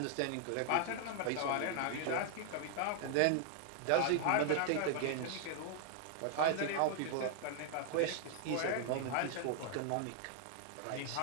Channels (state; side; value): different; both; correlation 0.00